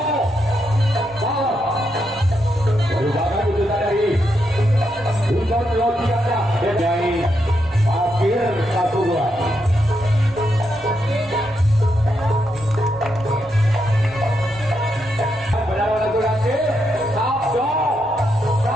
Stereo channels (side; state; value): left; noise; rumble, 26 dB below the sound